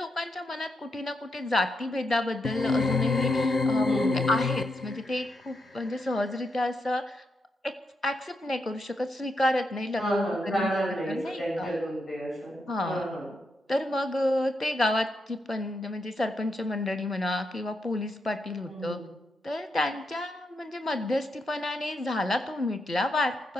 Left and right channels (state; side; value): normal; both; correlation 0.83